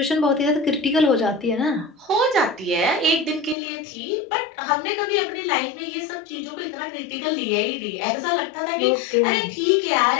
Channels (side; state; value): right; drops out; at 3.6 s